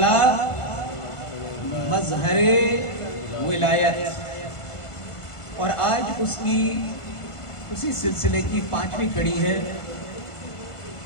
مظہر ولایت، اور آج اسی سلسلے کی 5ویں کڑی ہے۔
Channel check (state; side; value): late; right; 1.5 ms